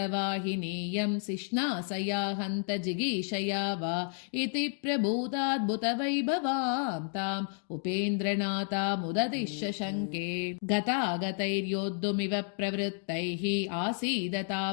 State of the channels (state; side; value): silent; right; 56 dB below the other